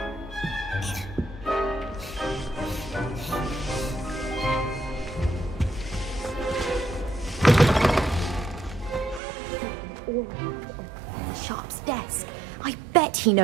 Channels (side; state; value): left; drops out; at 9.2 s